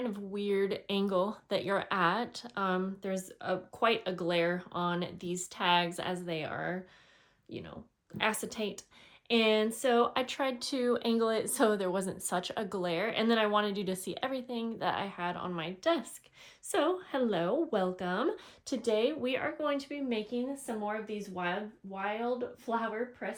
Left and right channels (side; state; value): both; identical; correlation 1.00